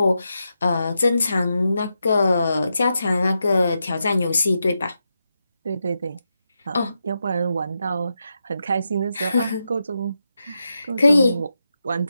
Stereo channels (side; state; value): both; inverted; correlation -0.86